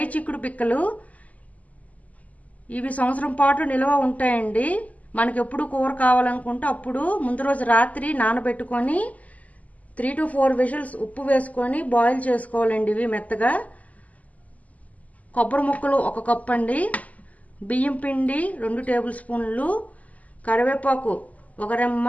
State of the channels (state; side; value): late; right; 0.073 ms